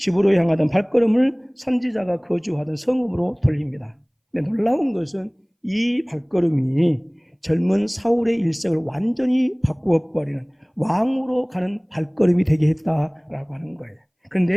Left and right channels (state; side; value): identical; both; correlation 1.00